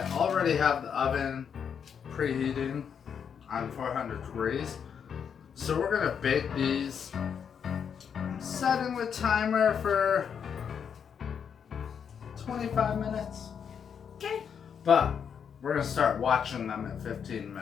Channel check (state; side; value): quieter; right; 7.4 dB